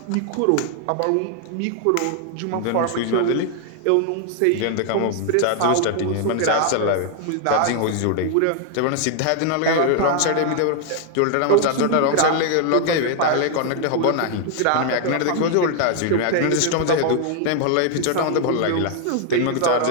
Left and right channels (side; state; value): both; different; correlation 0.00